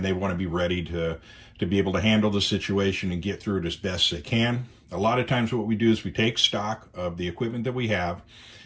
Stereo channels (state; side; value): identical; both; correlation 1.00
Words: they want to be ready to be able to handle the situation and get through it as best they can. A lot of times what we do is we take stock of the equipment that we have,